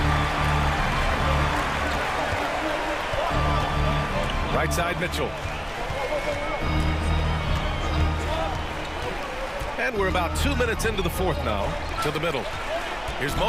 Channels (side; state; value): both; identical; correlation 1.00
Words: Right side, Mitchell. And we're about 2 minutes into the fourth now. To the middle. Here's